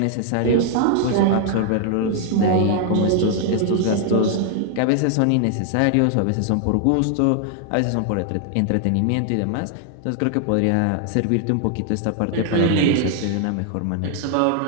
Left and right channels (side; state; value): both; different; correlation 0.00